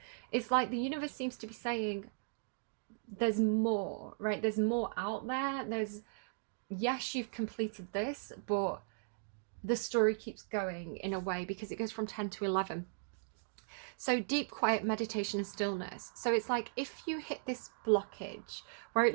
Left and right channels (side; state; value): left; silent; digital silence